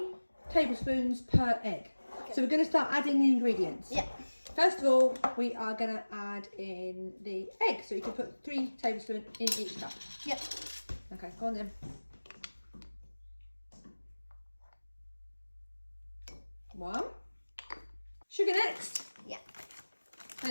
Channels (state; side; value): inverted; both; correlation -1.00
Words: tablespoons per egg. Okay. So we're going to start adding the ingredients. Yeah. First of all, we are going to add in the egg, so you can put 3 tablespoons in each cup. Yep. Okay, go on then. 1. Sugar next. Yeah.